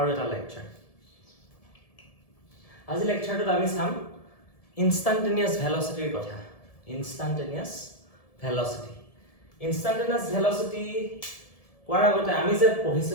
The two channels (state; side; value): late; right; 1.7 ms